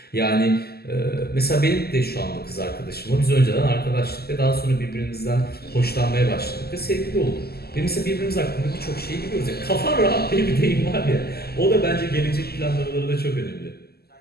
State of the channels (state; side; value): late; right; 0.46 ms